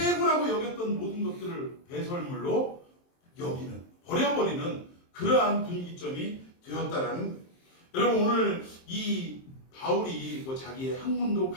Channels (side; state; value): right; late; 23 ms